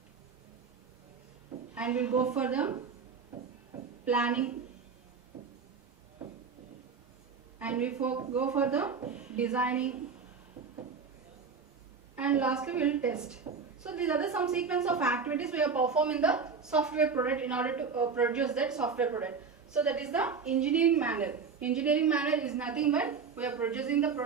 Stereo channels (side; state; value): left; quieter; 5.6 dB